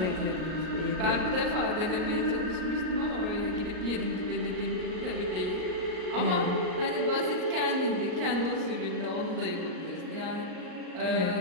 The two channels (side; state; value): left; late; 38 ms